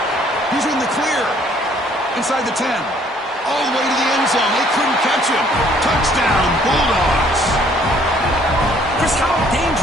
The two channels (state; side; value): normal; both; correlation 0.61